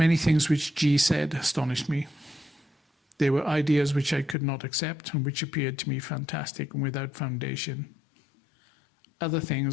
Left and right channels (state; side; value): drops out; right; at 4.4 s